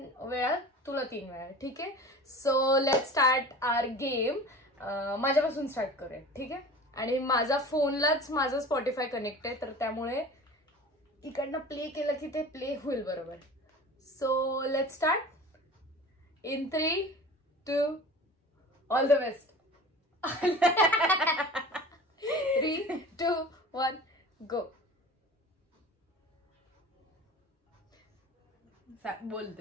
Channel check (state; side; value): normal; both; correlation 0.39